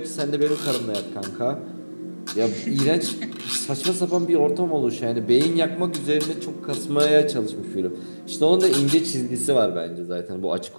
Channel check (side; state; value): both; inverted; correlation -1.00